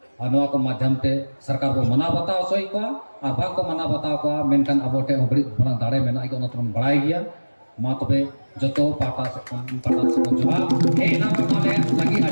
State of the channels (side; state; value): both; inverted; correlation -1.00